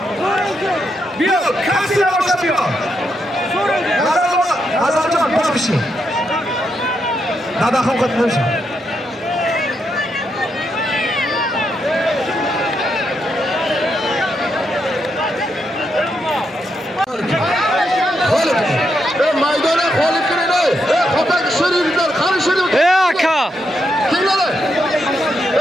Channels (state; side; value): normal; both; correlation 0.81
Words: Yo'q, kassira boshlab yo'q. Nazarjon boshqishi. Dadaxon qat'iy. Maydona qolib kiringlar. Xo'pak shirinlar, qani shirin. Aka. Kelinglar.